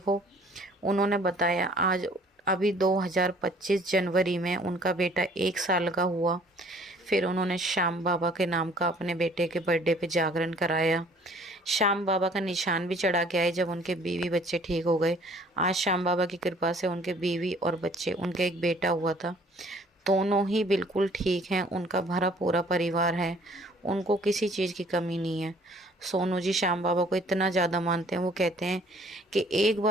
उन्होंने बताया आज अभी 2025 जनवरी में उनका बेटा 1 साल का हुआ। फिर उन्होंने श्याम बाबा के नाम का अपने बेटे के बर्थडे पे जागरण कराया। श्याम बाबा का निशान भी चढ़ा के आए जब उनके बीवी बच्चे ठीक हो गए। आज श्याम बाबा की कृपा से उनके बीवी और बच्चे, उनके एक बेटा हुआ था, दोनों ही बिल्कुल ठीक हैं। उनका भरा पूरा परिवार है, उनको किसी चीज़ की कमी नहीं है। सोनू जी श्याम बाबा को इतना ज़्यादा मानते हैं, वो कहते हैं कि एक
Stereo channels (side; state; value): both; normal; correlation 0.56